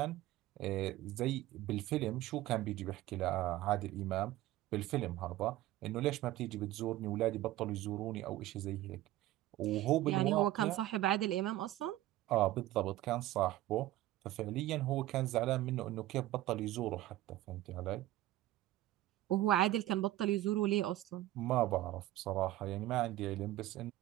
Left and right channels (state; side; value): quieter; left; 15.3 dB